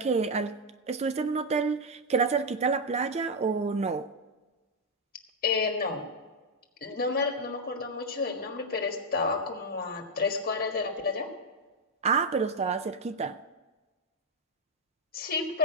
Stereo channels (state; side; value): normal; both; correlation 0.00